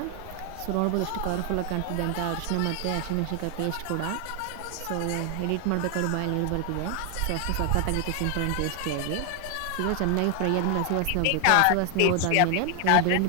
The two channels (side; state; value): both; different; correlation 0.00